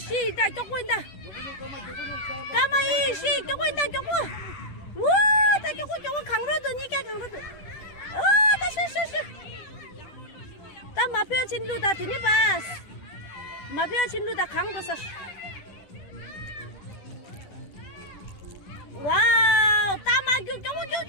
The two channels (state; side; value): late; right; 10 ms